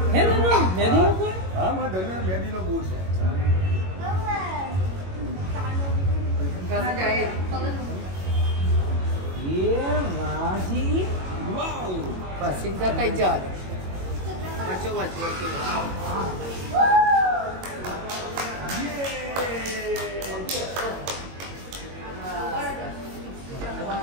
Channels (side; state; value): left; late; 21 ms